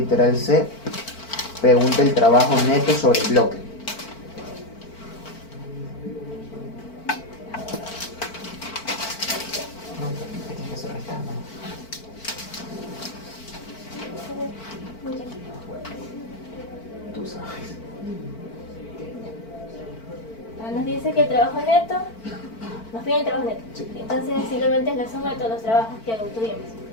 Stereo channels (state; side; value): late; right; 4.5 ms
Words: C pregunta el trabajo neto sobre el bloque. Tú sabes. Nos dice que el trabajo neto, nos pide el trabajo neto. Sí. Entonces simplemente es la suma de todos los trabajos que obtuvimos.